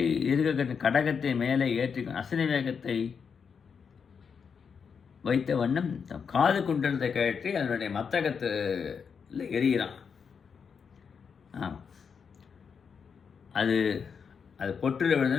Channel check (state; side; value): quieter; right; 6.3 dB